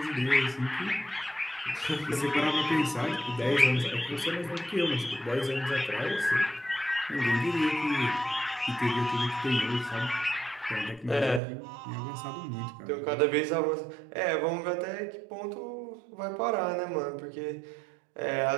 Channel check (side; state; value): left; drops out; at 11.4 s